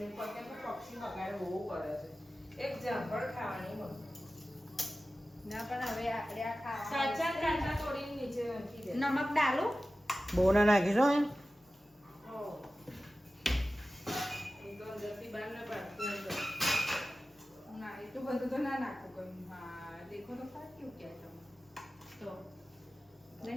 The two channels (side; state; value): both; normal; correlation 0.95